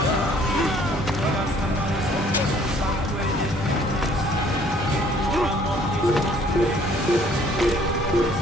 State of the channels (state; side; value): normal; both; correlation 0.59